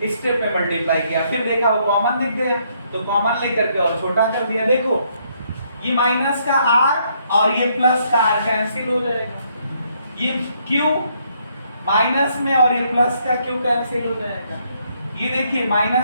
स्टेप में मल्टीप्लाई किया, फिर देखा वो कॉमन दिख गया तो कॉमन लेकर के और छोटा कर दिया, देखो ये माइनस का r और ये प्लस का r कैंसिल हो जाएगा, ये q माइनस में और ये प्लस का q कैंसिल हो जाएगा, ये देखिए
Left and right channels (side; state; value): both; inverted; correlation -0.71